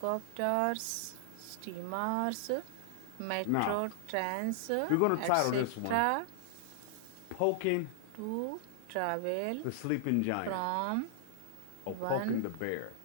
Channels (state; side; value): different; both; correlation -0.01